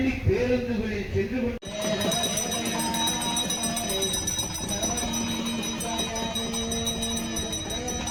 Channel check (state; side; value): identical; both; correlation 1.00